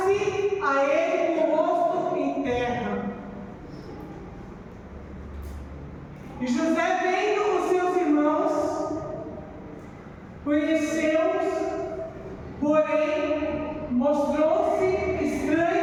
a ele com o rosto em terra. E José, vendo os seus irmãos, conheceu-os, porém mostrou-se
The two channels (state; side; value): identical; both; correlation 1.00